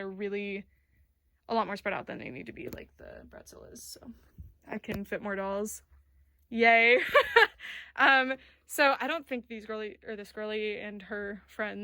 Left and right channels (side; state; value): both; identical; correlation 1.00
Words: really a lot more spread out than they need to be, like the Bratzel is. So I can fit more dolls. Yay. So I don't think this girly and her